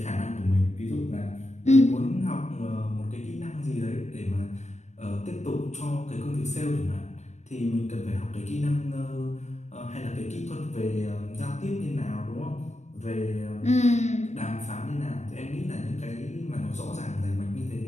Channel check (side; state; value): right; late; 0.33 ms